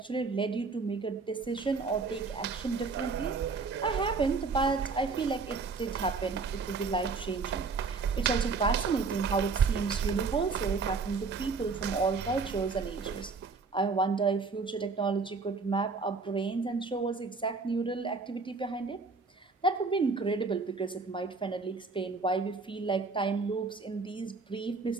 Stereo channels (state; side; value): quieter; left; 4.4 dB